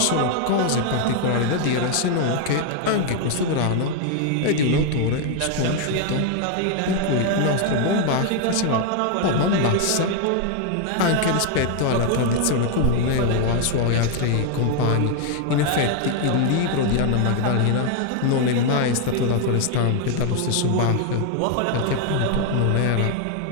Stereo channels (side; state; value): both; different; correlation 0.00